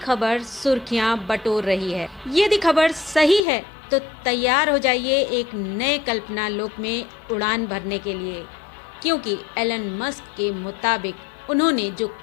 सुर्खियां बटोर रही है। यदि खबर सही है तो तैयार हो जाइए एक नए कल्पना लोक में उड़ान भरने के लिए, क्योंकि एलन मस्क के मुताबिक उन्होंने जो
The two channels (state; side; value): drops out; right; at 3.4 s